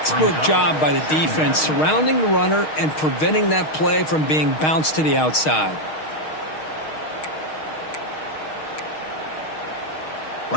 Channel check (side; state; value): right; late; 6.4 ms